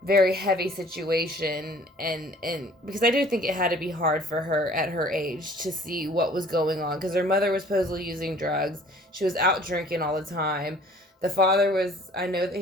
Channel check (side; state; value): both; normal; correlation 0.52